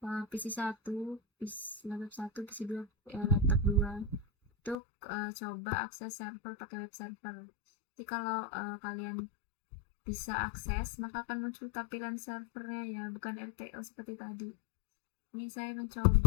PC 1, laptop 1, PC 2, laptop 2 untuk coba akses server pakai web server. Jadi kalau kalian bisa akses, maka akan muncul tampilan servernya ya, bukan RTO seperti tadi. Ini saya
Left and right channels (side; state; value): right; drops out; at 4.8 s